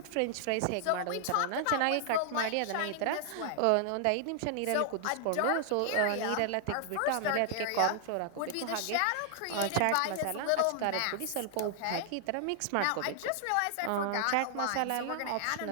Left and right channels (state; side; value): different; both; correlation -0.01